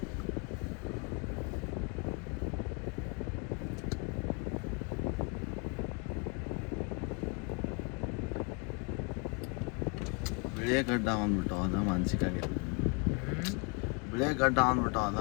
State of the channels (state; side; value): quieter; right; 33.0 dB